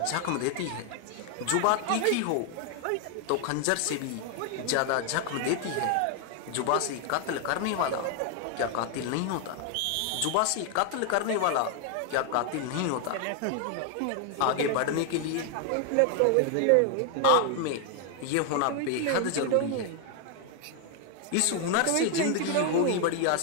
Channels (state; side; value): different; both; correlation 0.00